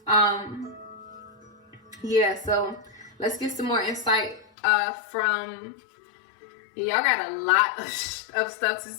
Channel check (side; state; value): right; drops out; at 4.5 s